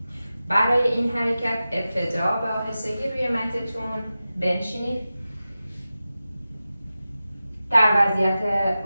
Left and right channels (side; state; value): both; inverted; correlation -0.94